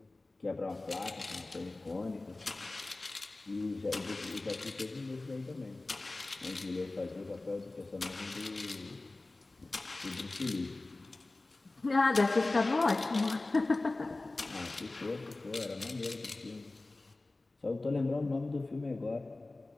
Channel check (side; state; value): right; quieter; 3.1 dB